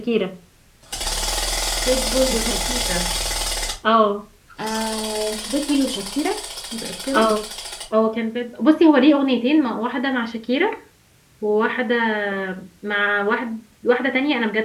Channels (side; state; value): both; identical; correlation 1.00